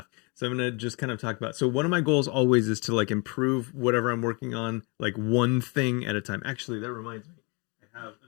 So I'm gonna just kind of talk about. So one of my goals always is to like improve whatever I'm working on, like one thing at a time. Actually, that reminds me, I have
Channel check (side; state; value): right; quieter; 31.6 dB